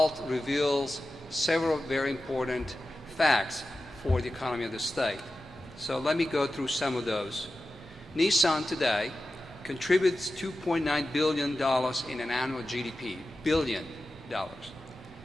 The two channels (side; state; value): both; normal; correlation 0.93